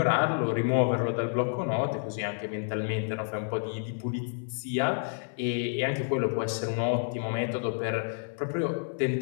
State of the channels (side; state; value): right; silent; 56 dB below the other